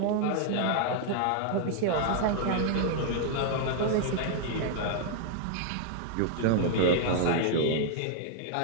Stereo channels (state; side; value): different; both; correlation -0.01